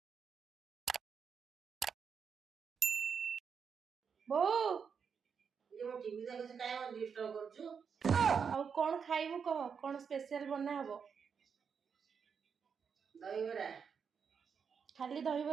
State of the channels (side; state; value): left; quieter; 6.5 dB